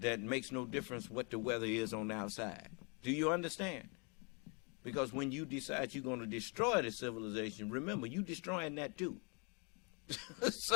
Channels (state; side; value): quieter; right; 34.4 dB